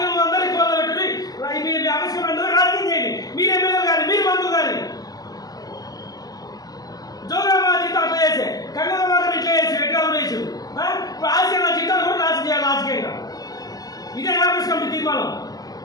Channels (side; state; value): right; late; 0.18 ms